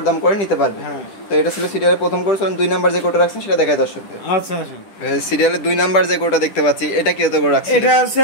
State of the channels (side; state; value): right; late; 10 ms